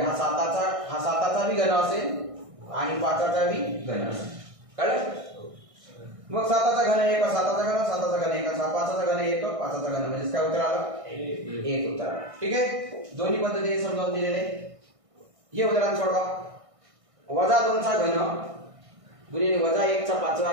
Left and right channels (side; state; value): left; late; 1.6 ms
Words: हा 7चा बी घन असेल आणि 5चा बी घन असेल. कळलं, मग 7चा घन 1 7चा घन 7चा घन 1 5चा घन 1 5चा घन, म्हणजे काय उत्तर आलं, 1 उत्तर. ठीक आहे, दोन्ही पद्धतीने समजावून दिलेले. हे उदाहरण सोडवा. वजा 2चा घन गुणिले वजा 1चा 5वा